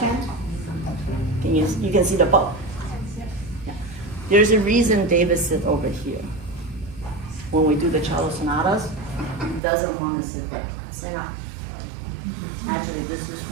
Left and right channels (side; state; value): left; drops out; at 9.6 s